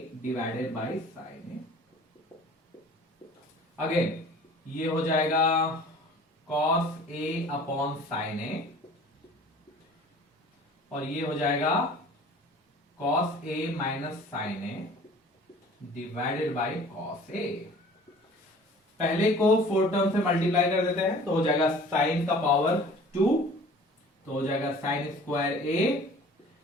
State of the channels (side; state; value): both; normal; correlation 0.47